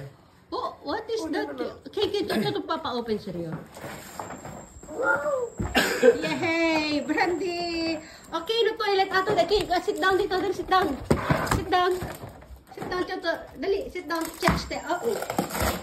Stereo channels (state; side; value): identical; both; correlation 1.00